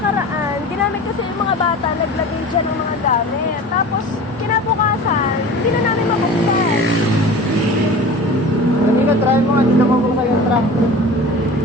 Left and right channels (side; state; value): both; normal; correlation 0.37